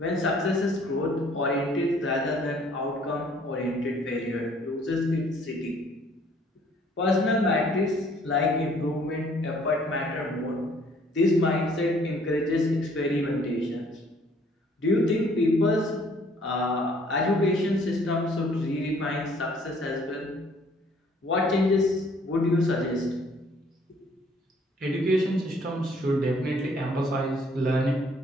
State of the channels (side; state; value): both; normal; correlation 0.60